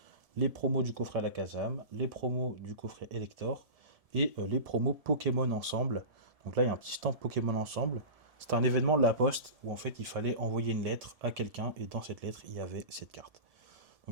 les promos du coffret Alakazam, les promos du coffret Elector et les promos Pokémon ensemble. Donc là, il y a un petit stand Pokémon ensemble. C'était un événement de la Poste où en fait il fallait envoyer une lettre à quelqu'un et dans cette lettre il y avait cette carte.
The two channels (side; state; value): left; late; 1.7 ms